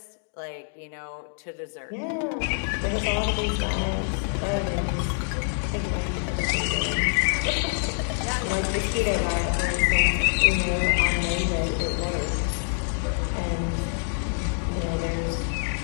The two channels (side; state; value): right; silent; 61 dB below the other